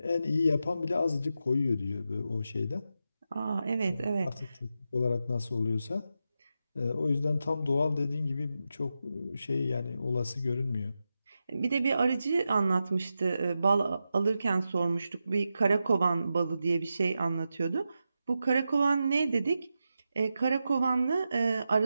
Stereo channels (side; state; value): both; inverted; correlation -0.89